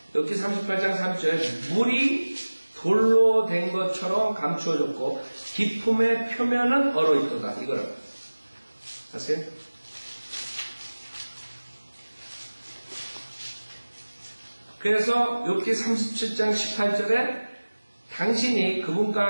욥기 38장 30절에 물이 돌로 된 것처럼 감추어졌고 깊음의 표면은 얼어있도다. 이거를 아세요? 그래서 욥기 37장 18절에 당신이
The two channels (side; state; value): both; inverted; correlation -1.00